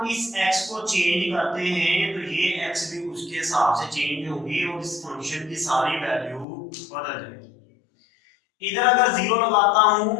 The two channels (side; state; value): right; drops out; at 6.5 s